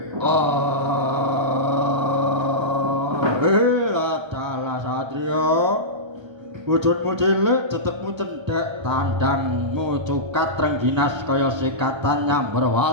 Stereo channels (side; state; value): left; late; 1.3 ms